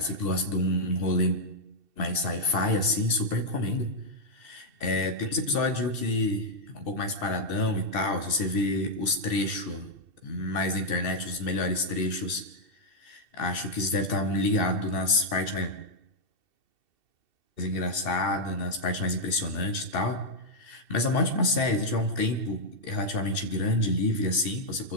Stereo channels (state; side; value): late; left; 2.7 ms